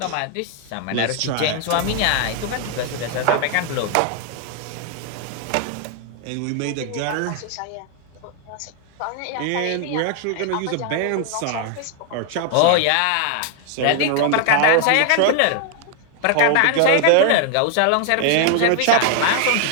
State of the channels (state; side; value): different; both; correlation 0.00